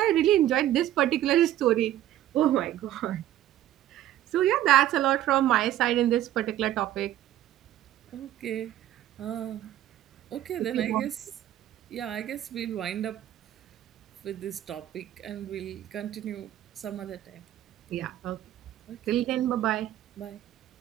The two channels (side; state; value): left; quieter; 12.9 dB